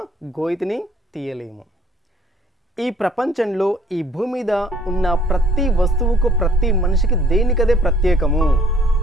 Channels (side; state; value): both; normal; correlation 0.59